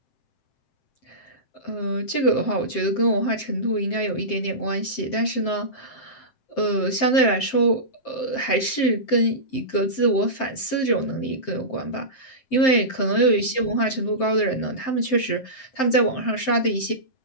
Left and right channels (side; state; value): right; late; 7.7 ms